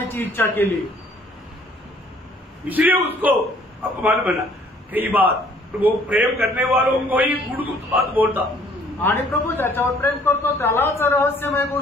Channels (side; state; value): both; normal; correlation 0.58